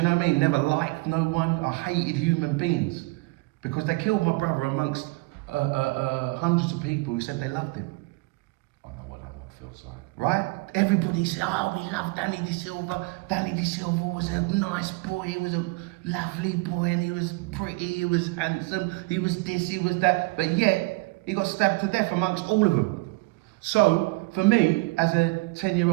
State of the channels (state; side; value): quieter; left; 24.9 dB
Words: know what I mean? Never liked no one. I hated human beings because they killed my brother amongst hundreds of people who said they loved him. I know what that feels like. Right? Everybody said, oh, we love Danny De Silva. Danny De Silva was a nice boy. He was a lovely boy, and he was pretty. He was handsome. He was this. He was that. But yet he got stabbed to death amongst all of them. So, for me, as a